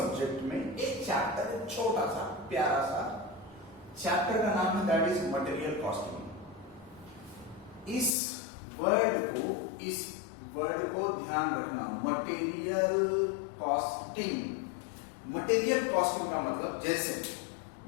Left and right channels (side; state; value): right; drops out; at 8.1 s